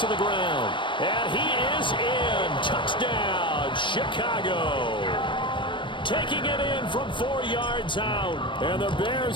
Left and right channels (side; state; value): right; late; 0.24 ms